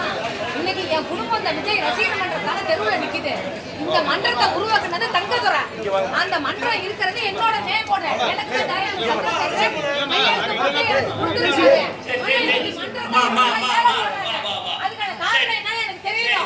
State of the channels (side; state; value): both; identical; correlation 1.00